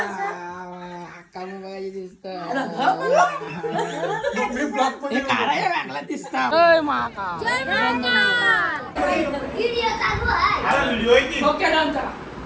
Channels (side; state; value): both; identical; correlation 1.00